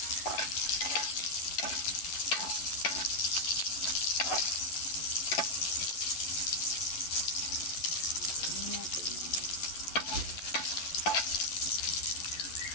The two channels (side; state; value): right; late; 12 ms